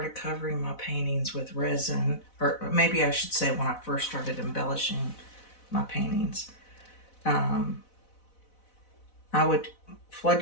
covering my paintings with resin, or maybe I should say when I first started embellishing my paintings, I would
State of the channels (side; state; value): right; late; 4.0 ms